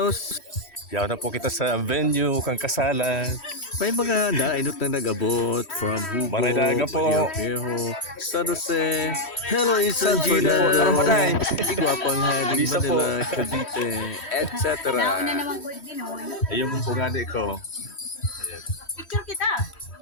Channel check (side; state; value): right; late; 3.1 ms